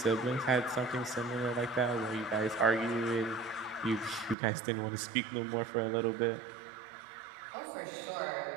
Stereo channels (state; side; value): drops out; left; at 4.4 s